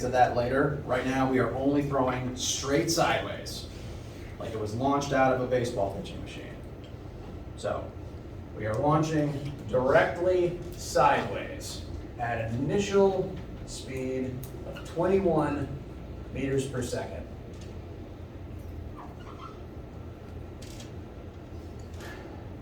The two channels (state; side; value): identical; both; correlation 1.00